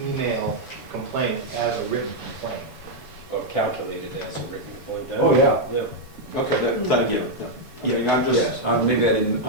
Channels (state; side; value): late; left; 7.0 ms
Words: email complaint as a written complaint? Or calculated as a written complaint. Oh, yeah. Yeah. Okay, then, yeah. I mean, I'm just, Yes, maybe I didn't